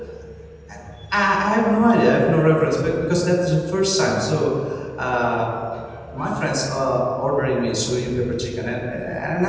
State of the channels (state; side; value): identical; both; correlation 1.00